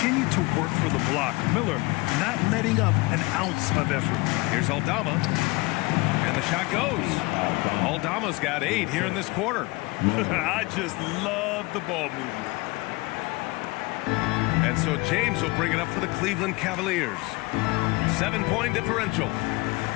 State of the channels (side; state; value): right; quieter; 24.1 dB